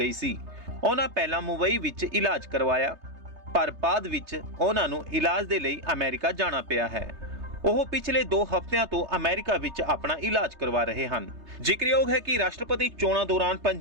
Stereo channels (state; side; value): late; left; 3.3 ms